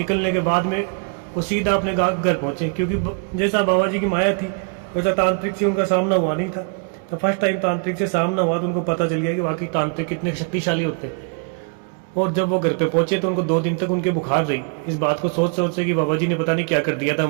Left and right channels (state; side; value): quieter; left; 37.4 dB